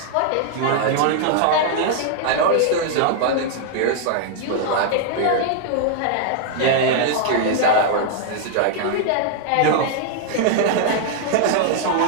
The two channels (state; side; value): different; both; correlation 0.00